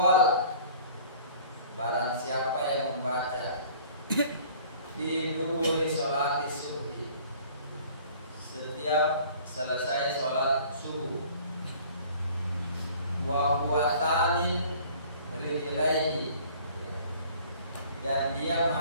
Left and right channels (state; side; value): inverted; both; correlation -0.50